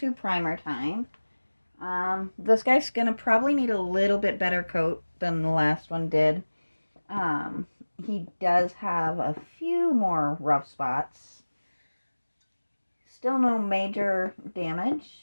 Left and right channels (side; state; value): both; inverted; correlation -1.00